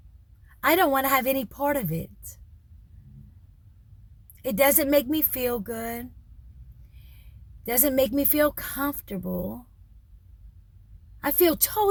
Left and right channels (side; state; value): both; identical; correlation 1.00